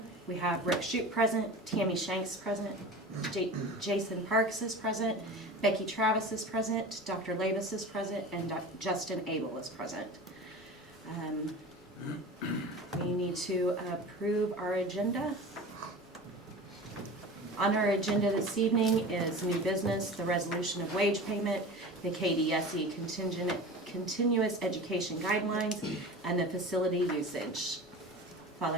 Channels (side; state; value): both; normal; correlation 0.34